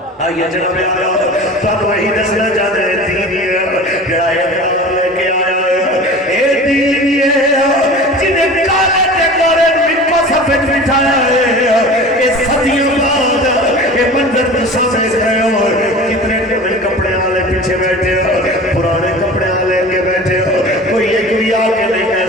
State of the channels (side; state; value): both; normal; correlation 0.38